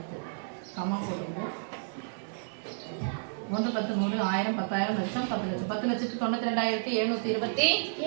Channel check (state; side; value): silent; left; digital silence